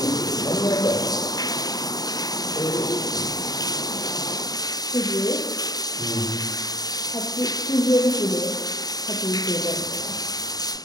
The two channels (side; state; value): right; late; 0.18 ms